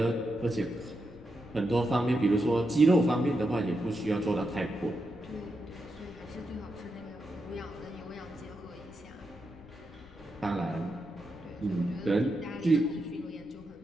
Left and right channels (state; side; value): noise; left; rumble, 21 dB below the sound